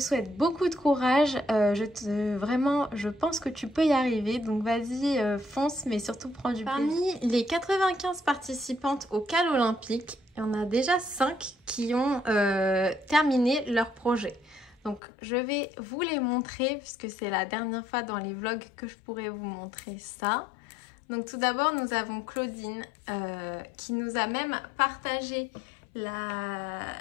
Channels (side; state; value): right; drops out; at 15.0 s